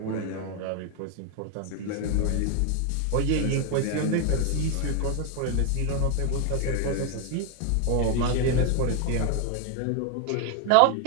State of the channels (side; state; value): both; different; correlation 0.01